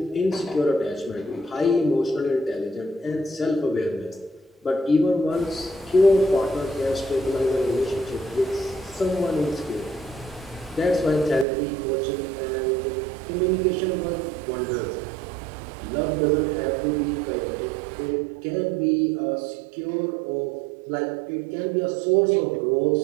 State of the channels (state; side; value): drops out; left; at 11.5 s